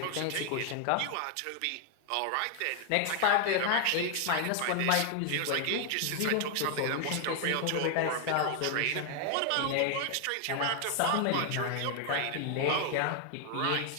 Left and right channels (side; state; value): both; different; correlation 0.00